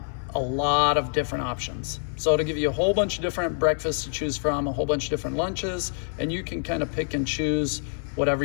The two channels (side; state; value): right; silent; 55 dB below the other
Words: lot of different options. So it'll give you a whole bunch of different breakfasts to choose from, a whole bunch of different lunches, and you can kind of pick and choose whatever